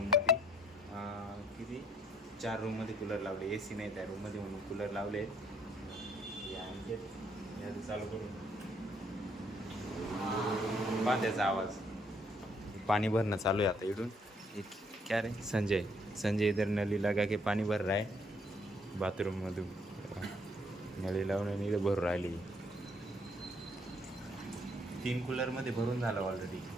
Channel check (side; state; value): both; normal; correlation 0.67